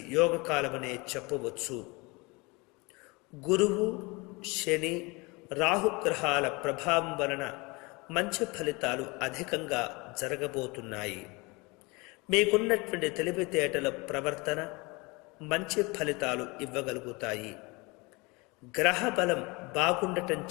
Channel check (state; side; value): quieter; right; 26.4 dB